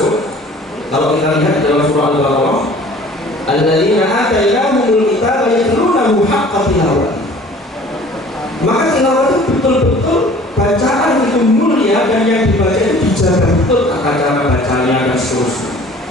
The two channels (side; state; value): both; normal; correlation 0.49